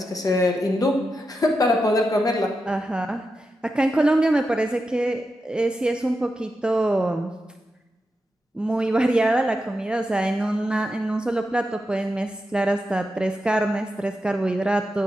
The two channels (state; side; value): normal; both; correlation 0.88